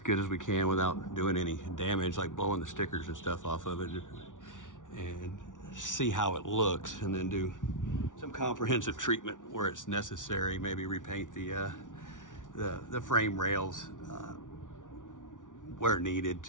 as we can without doing any damage, like blowing the stickers and stuff off of it, and see how it looks, and then do some comprehensive treatment where it's necessary. Maybe repaint the frame rails where needed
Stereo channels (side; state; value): right; late; 0.87 ms